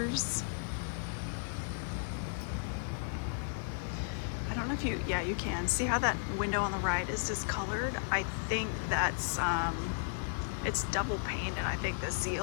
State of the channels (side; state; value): right; silent; digital silence